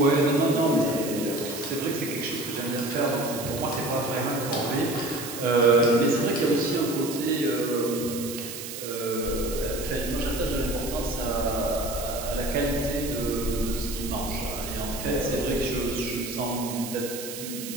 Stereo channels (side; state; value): right; noise; hiss, 9 dB below the sound